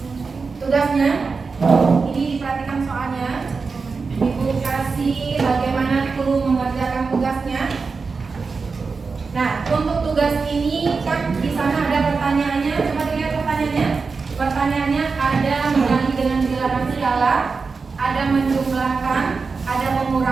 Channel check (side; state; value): left; quieter; 4.7 dB